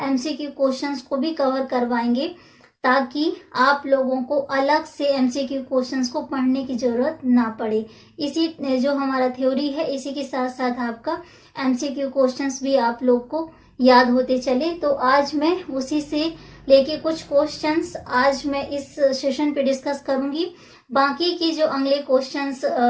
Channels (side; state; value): both; identical; correlation 1.00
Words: एमसीक्यू क्वेश्चंस को भी कवर करवाएंगे, ताकि आप लोगों को अलग से एमसीक्यू क्वेश्चंस को पढ़ने की जरूरत ना पड़े। इसी जो हमारा थ्योरी है इसी के साथ साथ आपका एमसीक्यू क्वेश्चंस भी आप लोग को याद होते चले। तो आज मैं उसी से लेके कुछ क्वेश्चंस आज मैं इस सेशन पे डिस्कस करूंगी। बाकी की जो अगले क्वेश्चंस